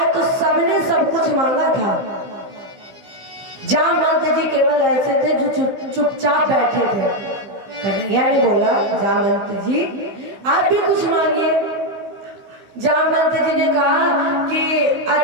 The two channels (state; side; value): late; left; 15 ms